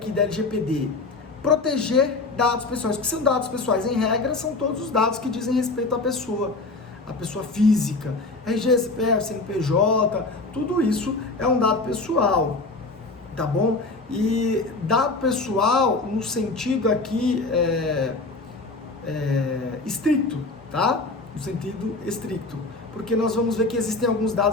da LGPD? Proteger dados pessoais, porque são dados pessoais, em regra, são todos os dados que dizem respeito à pessoa física, RG, CPF, CNPJ, tudo isso é um dado pessoal, tá bom? E dado pessoal, no sentido aqui estricto, tá? No sentido estricto, porque nós vamos ver que existem alguns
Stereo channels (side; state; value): right; quieter; 3.5 dB